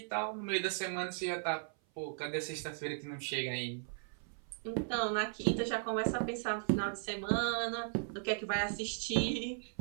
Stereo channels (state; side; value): silent; left; 53 dB below the other